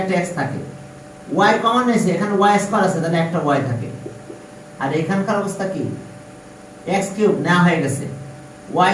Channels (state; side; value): identical; both; correlation 1.00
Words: x থাকে, y কমন নিয়েছি এখানে y স্কয়ার আছে তাহলে একটা y থাকে। আর এখানকার অবস্থা কি, x কিউব নেওয়া হয়ে গেছে, y